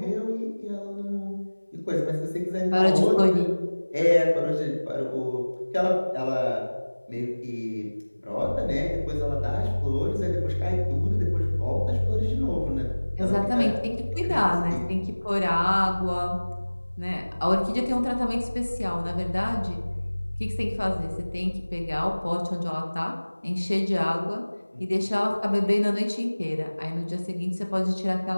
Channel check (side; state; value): both; inverted; correlation -1.00